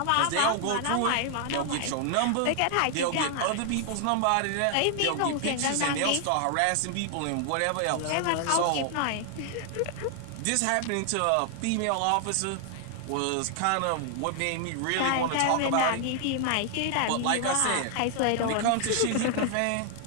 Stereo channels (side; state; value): both; different; correlation 0.00